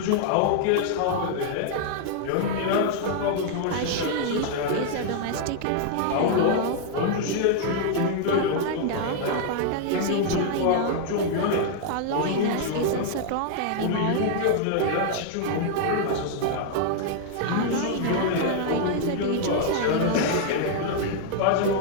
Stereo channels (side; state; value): both; different; correlation 0.00